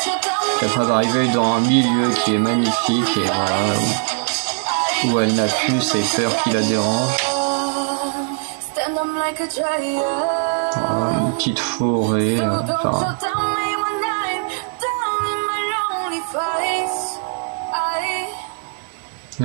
Puis après, elle va arriver dans un milieu qui est magnifique et voilà, où elle n'a plus ses peurs qui la dérangent. Voilà, une petite forêt, enfin.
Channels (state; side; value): silent; left; 63 dB below the other